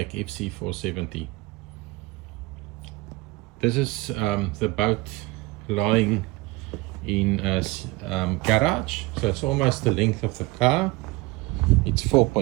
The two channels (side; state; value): left; quieter; 21.4 dB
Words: FC470. This is the boat lying in a garage, so it's almost the length of the car. It's